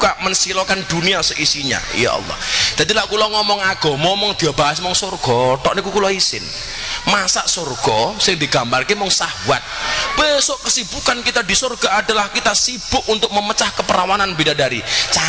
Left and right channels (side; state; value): both; identical; correlation 1.00